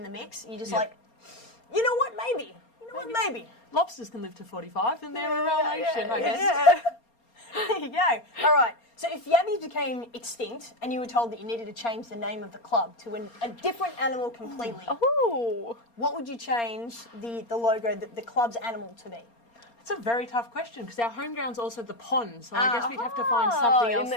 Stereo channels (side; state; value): right; late; 4.3 ms